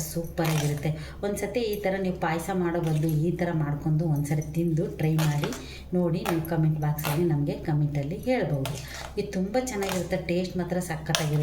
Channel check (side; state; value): both; identical; correlation 1.00